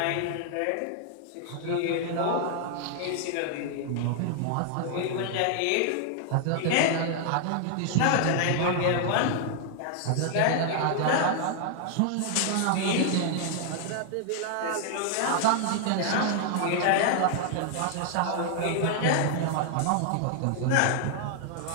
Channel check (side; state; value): both; different; correlation 0.00